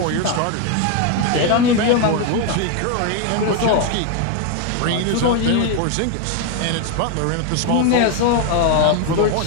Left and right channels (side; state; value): both; different; correlation 0.01